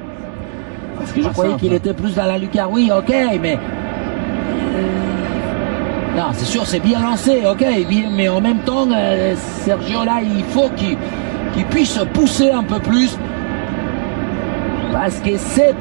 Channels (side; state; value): left; silent; 68 dB below the other